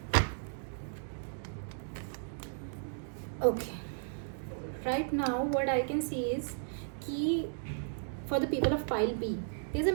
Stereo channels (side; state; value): left; silent; digital silence